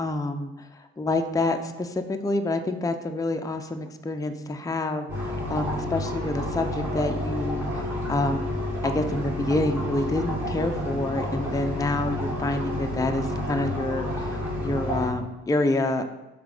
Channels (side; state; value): both; normal; correlation 0.68